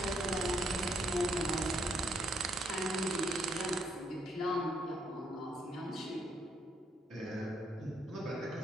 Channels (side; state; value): both; normal; correlation 0.72